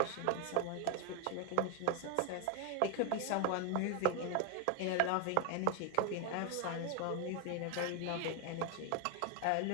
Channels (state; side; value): different; both; correlation 0.01